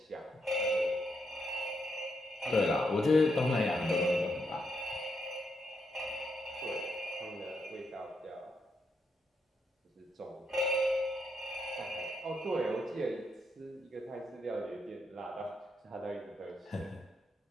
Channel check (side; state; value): both; normal; correlation 0.80